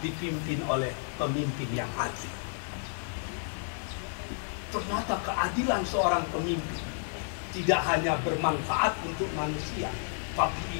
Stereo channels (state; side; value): silent; right; digital silence